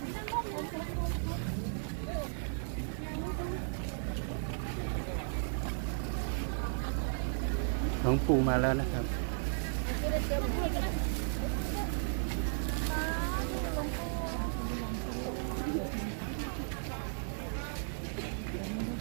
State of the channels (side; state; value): left; silent; digital silence